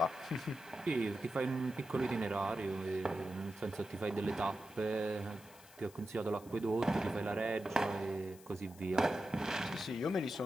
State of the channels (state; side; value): noise; left; hiss, 22 dB below the sound